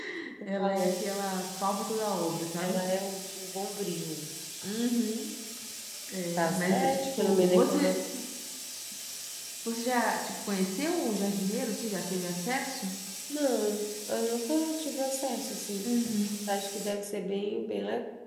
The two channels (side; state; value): both; identical; correlation 1.00